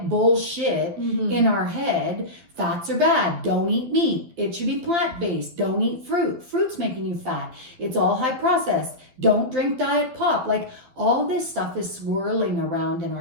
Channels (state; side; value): late; left; 12 ms